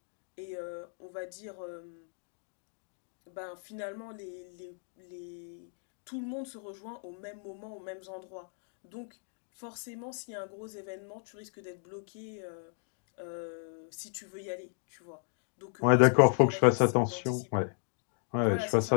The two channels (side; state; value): right; silent; 55 dB below the other